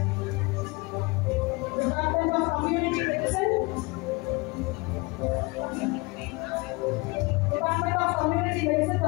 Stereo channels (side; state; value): right; quieter; 26.4 dB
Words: Community Medicine, Department of Community Medicine,